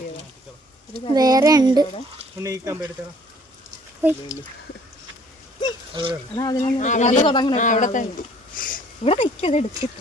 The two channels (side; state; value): both; normal; correlation 0.57